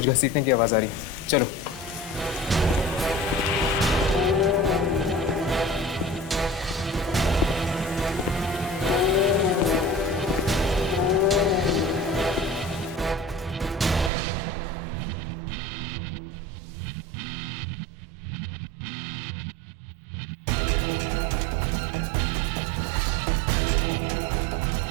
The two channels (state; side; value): drops out; left; at 14.1 s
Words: घसीटने की आवाज आ रही है, चलो।